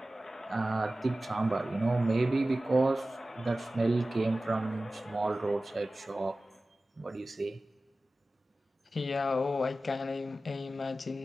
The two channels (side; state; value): both; normal; correlation 0.96